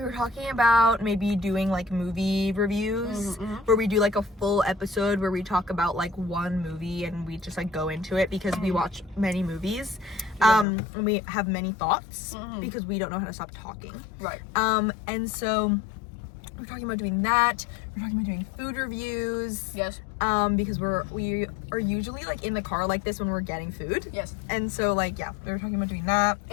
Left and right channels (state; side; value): drops out; right; at 10.7 s